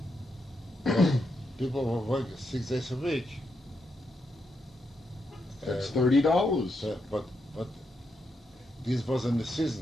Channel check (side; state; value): both; normal; correlation 0.82